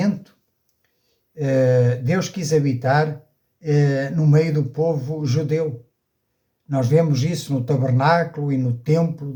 Deus quis habitar no meio do povo judeu. Nós vemos isso no tabernáculo e no templo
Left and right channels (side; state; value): both; identical; correlation 1.00